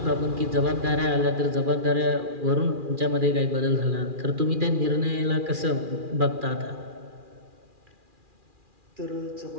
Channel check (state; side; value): late; left; 2.4 ms